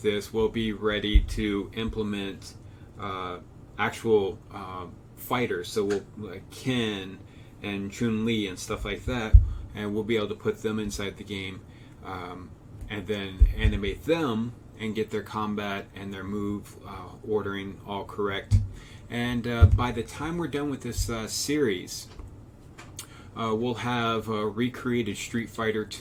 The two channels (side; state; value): both; identical; correlation 1.00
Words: this, we'll be ready to implement actual fighters. So we'll like Ken and Chun-Li and stuff like that, and we'll be able to put them inside the game, and then animate them and get their combat and their move ordering all correct. And by the time we're done with this series, we'll have recreated Street Fighter